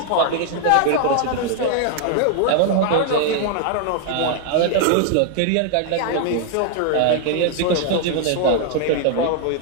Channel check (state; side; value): different; both; correlation 0.00